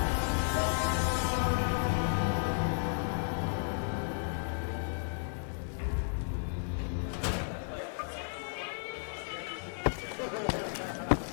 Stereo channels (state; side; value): silent; right; 55 dB below the other